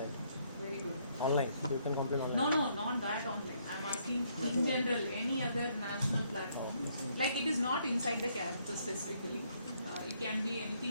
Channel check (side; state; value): both; inverted; correlation -0.70